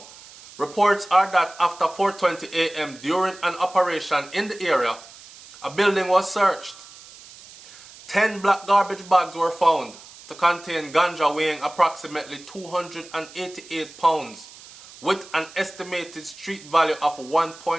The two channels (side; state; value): right; noise; hiss, 20 dB below the sound